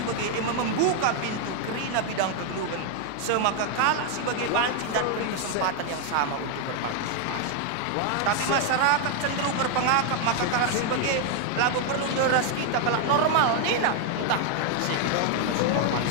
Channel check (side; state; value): both; different; correlation 0.01